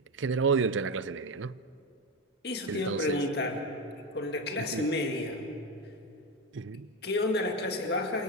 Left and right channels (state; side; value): normal; both; correlation 0.14